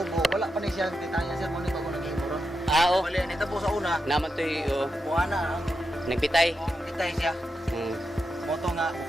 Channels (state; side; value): normal; both; correlation 0.87